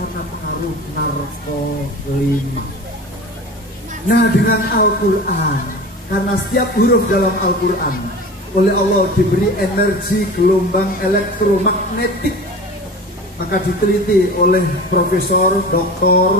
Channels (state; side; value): normal; both; correlation 0.35